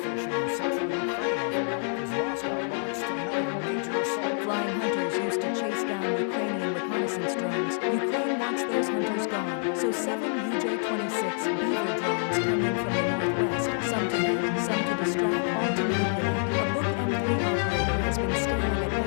in central Ukraine overnight as Moscow launched another major assault. Flying hunters used to chase down Ukrainian reconnaissance drones. Ukraine wants those hunters gone, so 7 UJ-26 Beaver drones come in from the northwest, some to hit, some to distract, all to manipulate. A Buk and S operator has been staring at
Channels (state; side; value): silent; right; 60 dB below the other